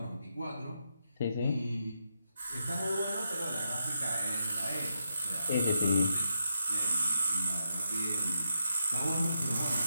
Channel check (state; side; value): inverted; both; correlation -0.84